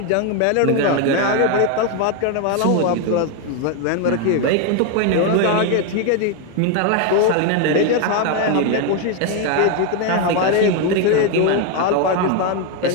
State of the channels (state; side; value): different; both; correlation 0.01